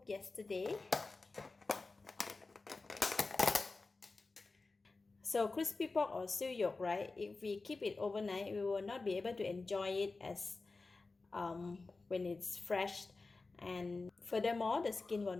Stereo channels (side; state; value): right; quieter; 3.7 dB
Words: yesterday. So crispy pork or siu yok, right? If we keep it overnight, we will not be able to enjoy it as when it's fresh, and furthermore the skin will